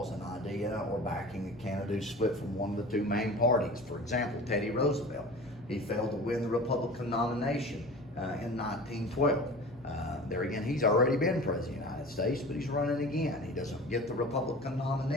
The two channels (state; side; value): noise; left; hum, 26 dB below the sound